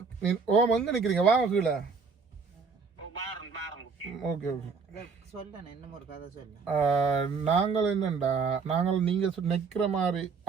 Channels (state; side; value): quieter; left; 5.2 dB